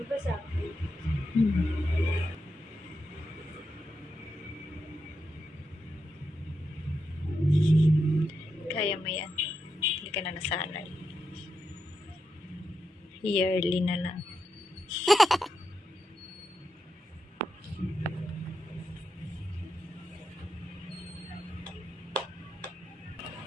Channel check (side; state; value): both; normal; correlation 0.86